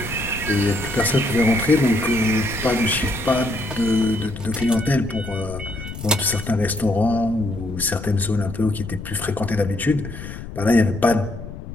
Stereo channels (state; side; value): noise; left; rumble, 11 dB below the sound